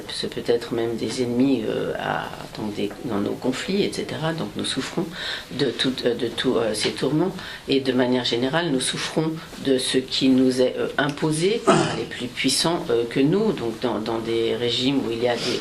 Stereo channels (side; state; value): both; identical; correlation 1.00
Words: peut être même des ennemis dans nos conflits, etc. Donc nous souffrons de tous ces tourments, et de manière générale nous souffrons de ce qui nous est imposé par les plus puissants que nous, donc dans des régimes où il y a des